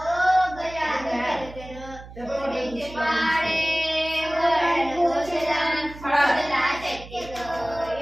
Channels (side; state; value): right; noise; hum, 16 dB below the sound